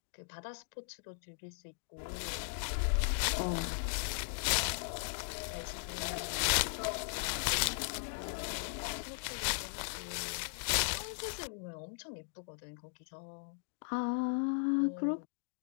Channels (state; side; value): silent; right; digital silence